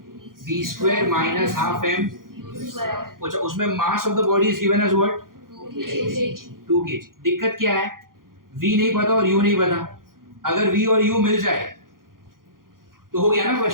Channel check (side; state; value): left; late; 0.91 ms